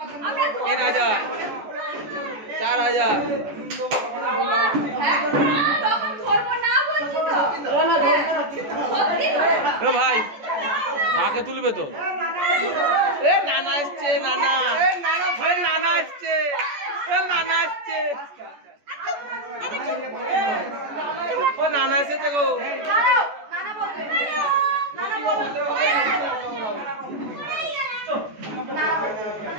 3000, 4000, ভাই ডাকে তুলবে তো। নানা এসছে, নানা নানা এসছে, নানা এসছে, ও নানা এসেছে গো।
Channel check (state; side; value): late; left; 14 ms